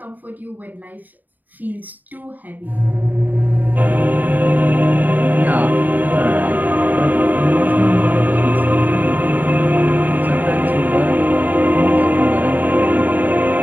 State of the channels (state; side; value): late; left; 0.085 ms